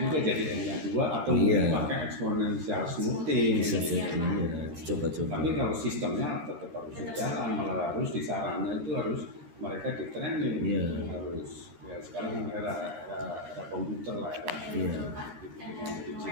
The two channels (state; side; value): late; left; 13 ms